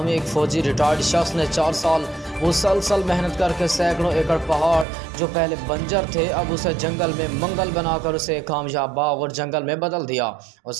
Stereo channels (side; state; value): left; drops out; at 4.9 s